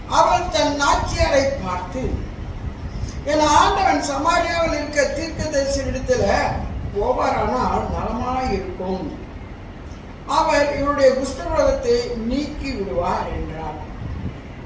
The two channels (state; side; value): identical; both; correlation 1.00